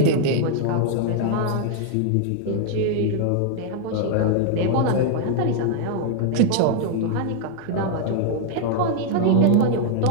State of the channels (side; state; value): both; different; correlation 0.00